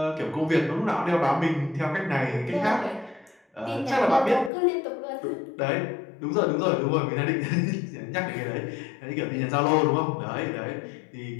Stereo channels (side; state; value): right; drops out; at 4.5 s